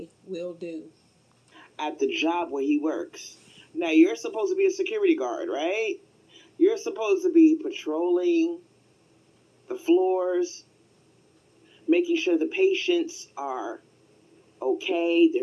will do. At the job where he works. Now, you're supposed to be a security guard, right? You're supposed to be patrolling the floors, making sure the patients are okay,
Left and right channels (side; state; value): both; identical; correlation 1.00